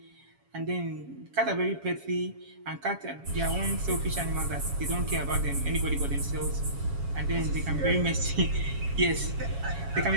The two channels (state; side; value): late; left; 7.2 ms